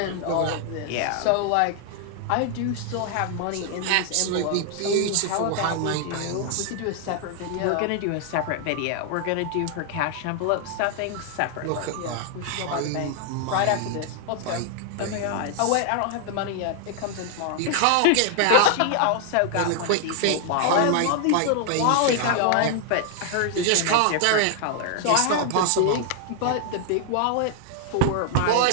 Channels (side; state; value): both; different; correlation 0.00